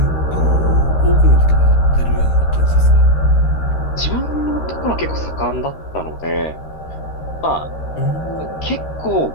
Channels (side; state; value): right; late; 13 ms